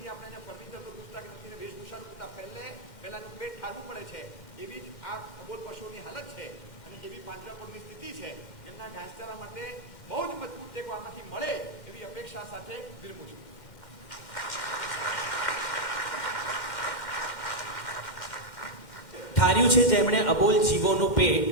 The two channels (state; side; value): late; right; 1.6 ms